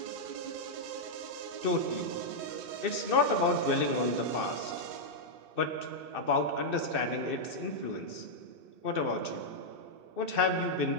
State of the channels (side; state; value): left; late; 2.6 ms